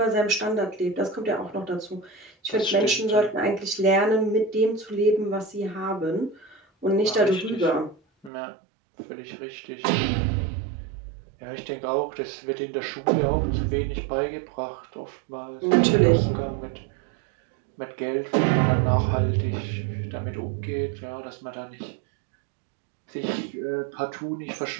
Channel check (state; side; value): drops out; left; at 8.3 s